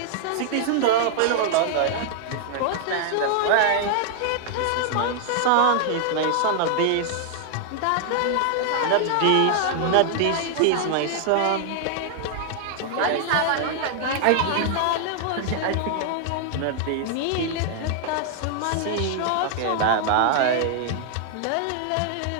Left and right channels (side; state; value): both; different; correlation 0.00